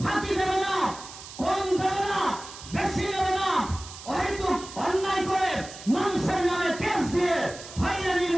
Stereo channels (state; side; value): noise; right; hiss, 14 dB below the sound